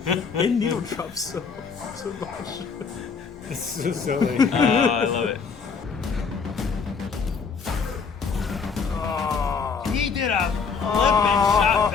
They needle drop so much. It's so silly. Oh, I love it. He did a flippin' shot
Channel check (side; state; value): right; quieter; 5.5 dB